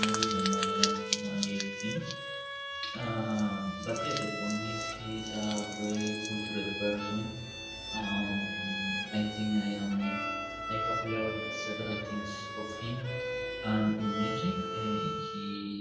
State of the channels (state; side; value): identical; both; correlation 1.00